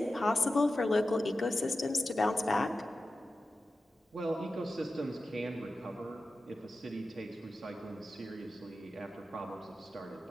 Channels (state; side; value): normal; both; correlation 0.93